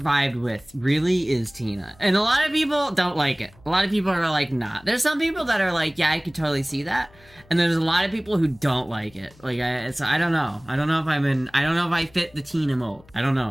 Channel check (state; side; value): noise; left; hum, 27 dB below the sound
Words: with really is Tina. And a lot of people don't like it. A lot of people are like, nah. There's some people that are like, yeah, I could totally see that. And there's a lot of people who don't like it. Like, I don't know. I don't know if I don't know if I fit the Tina mold. I don't